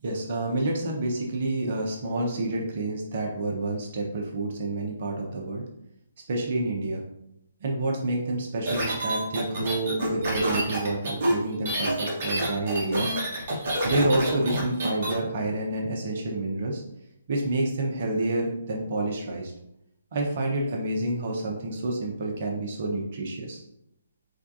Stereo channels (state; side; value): inverted; both; correlation -0.72